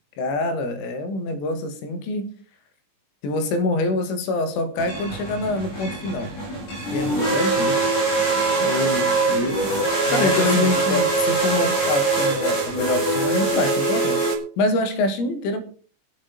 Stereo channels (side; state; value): right; late; 20 ms